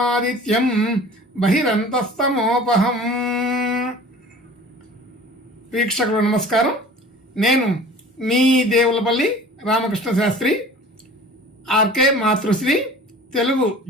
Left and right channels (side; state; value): both; normal; correlation 0.44